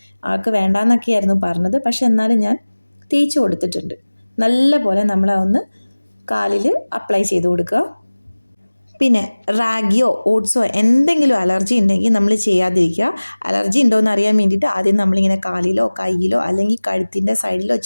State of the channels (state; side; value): inverted; both; correlation -1.00